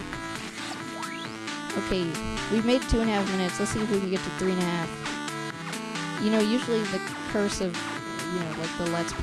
Okay, we've made 2.5 minutes. Let's see if we can get to 3.5. You know, usually the curse of, you know, like the Let's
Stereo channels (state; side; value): identical; both; correlation 1.00